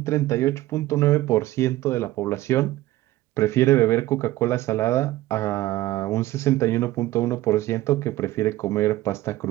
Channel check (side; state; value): left; quieter; 16.4 dB